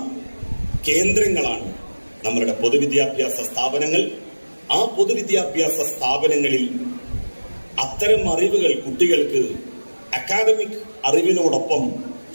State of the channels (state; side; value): inverted; both; correlation -1.00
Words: കേന്ദ്രങ്ങളാണ് നമ്മളുടെ പൊതുവിദ്യാഭ്യാസ സ്ഥാപനങ്ങൾ. ആ പൊതുവിദ്യാഭ്യാസ സ്ഥാപനങ്ങളിൽ അത്തരം അറിവുകൾ കുട്ടികൾക്ക് അക്കാദമിക് അറിവിനോടൊപ്പം